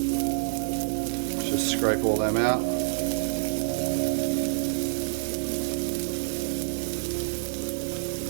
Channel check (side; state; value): left; silent; digital silence